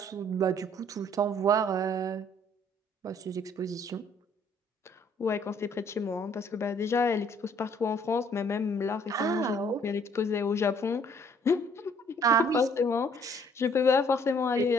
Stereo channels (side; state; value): both; normal; correlation 0.61